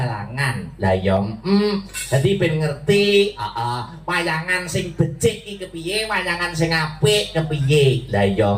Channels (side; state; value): both; identical; correlation 1.00